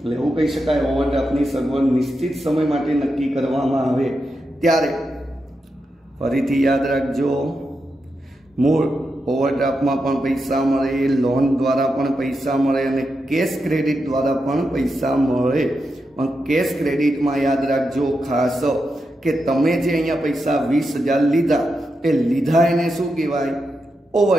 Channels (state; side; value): normal; both; correlation 0.87